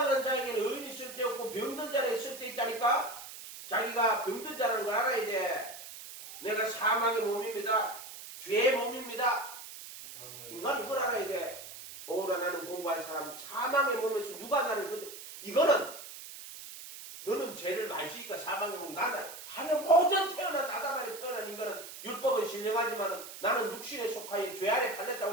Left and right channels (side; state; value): right; noise; hiss, 13 dB below the sound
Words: 자에게는 의인이 있을 때 없고 병든 자는 있을 때 있다니까. 자기가 병든 자라는 걸 알아야 돼. 내가 사망의 몸입니다. 죄의 몸입니다. 인간은 이걸 알아야 돼. 오라 나는 공부한 사람, 사망의 몸에서 누가 나를 이거는 너는 죄를 많이 지니까 사망의 몸이 나는 하늘 모든 태어난 아담 안에 태어난 인간은 율법은 신령하지만 나는 육신에 속하여 죄 안에 팔렸다고